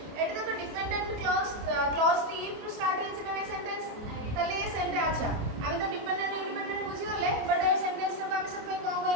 एटी देखो डिपेंडेंट क्लॉज टी टू स्टार्ट हेछि ना सेंटेंस तले ये सेंटेंस अच्छा आमे तो डिपेंडेंट इंडिपेंडेंट बुझी गले बट ए सेंटेंस रो आमे सब कोन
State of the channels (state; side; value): late; left; 28 ms